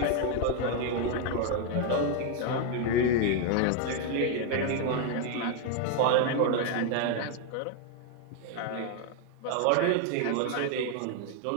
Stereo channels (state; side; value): different; both; correlation 0.01